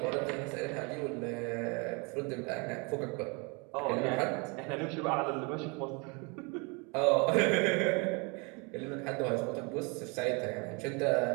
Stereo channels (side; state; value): left; quieter; 31.1 dB